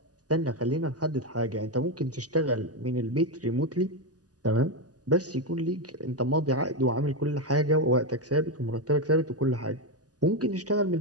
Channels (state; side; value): late; left; 0.67 ms